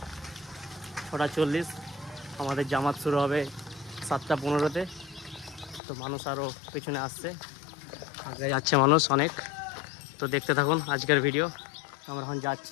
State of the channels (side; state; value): right; drops out; at 5.8 s